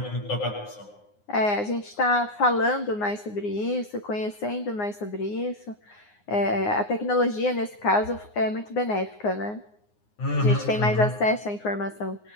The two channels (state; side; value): late; right; 9.6 ms